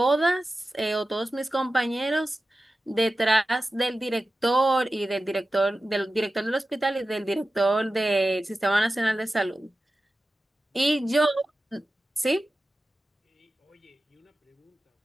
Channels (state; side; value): normal; both; correlation 0.94